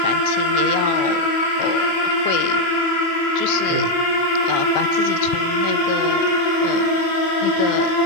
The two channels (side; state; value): right; late; 24 ms